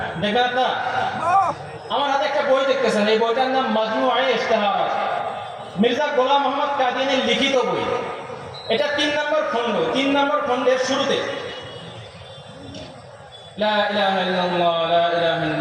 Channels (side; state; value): both; identical; correlation 1.00